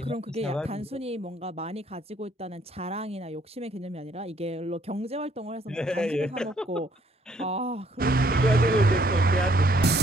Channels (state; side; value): normal; both; correlation 0.66